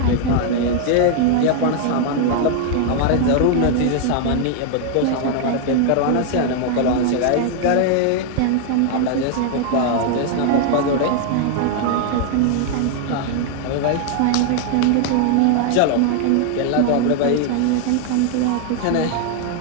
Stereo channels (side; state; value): both; different; correlation 0.00